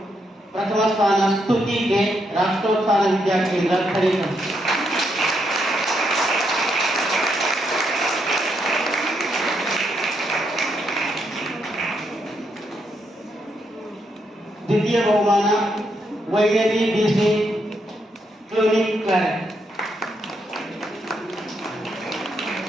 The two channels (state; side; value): normal; both; correlation 0.78